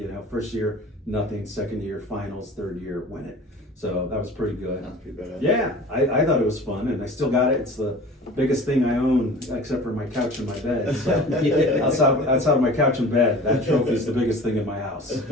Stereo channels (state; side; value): normal; both; correlation 0.41